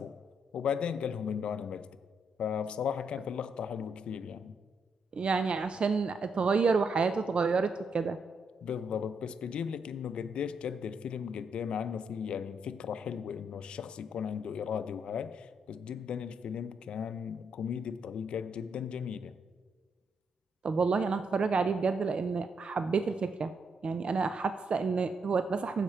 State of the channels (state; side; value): normal; both; correlation 0.77